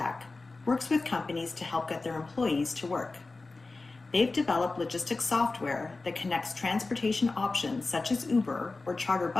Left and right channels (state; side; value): quieter; right; 3.6 dB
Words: works with companies to help get their employees to work. They've developed logistics software that connects transportation options such as Uber or charter